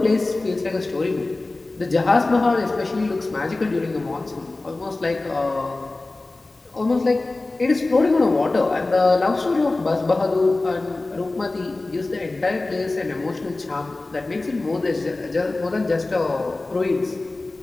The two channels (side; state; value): right; quieter; 3.1 dB